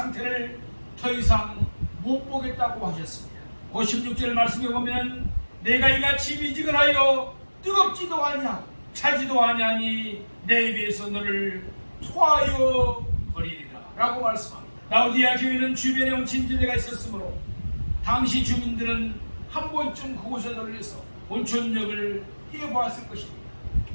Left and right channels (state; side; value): inverted; both; correlation -1.00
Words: 더 이상 못 보겠다고 하셨습니다. 56절 말씀에 보면 내가 이같이 미지근하여 뜨겁지도 아니하고 차지도 아니하니 내 입에서 너를 토하여 버리리라 라고 말씀합니다. 라오디아 교회는 주변에 온천지대가 있었으므로 당시 주민들은 한 번쯤 그곳에 들려서 온천욕을 해보았을 것입니다.